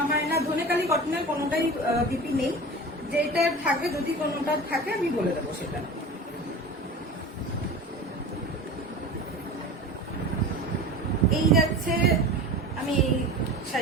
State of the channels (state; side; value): normal; both; correlation 0.34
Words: হয় না, ধনেকালি কটনের কোনোটাই বিপি নেই। যেটা থাকে, যদি কোনোটা থাকে আমি বলে দেবো সেটা। এই যাচ্ছে, আমি এই